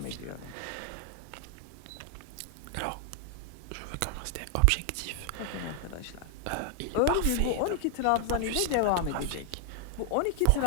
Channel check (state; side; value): different; both; correlation 0.00